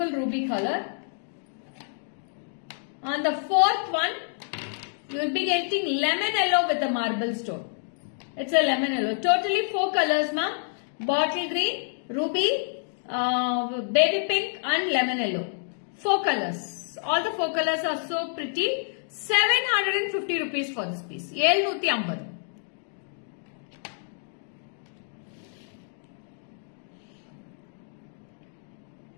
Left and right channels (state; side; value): silent; right; digital silence